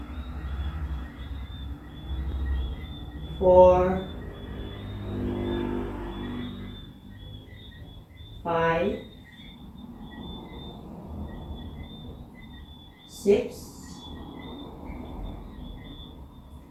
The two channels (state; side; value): identical; both; correlation 1.00